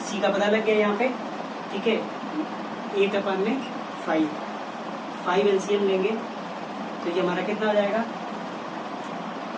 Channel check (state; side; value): identical; both; correlation 1.00